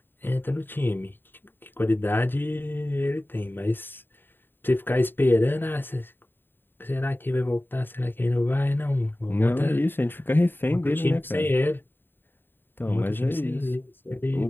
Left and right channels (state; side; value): late; right; 0.096 ms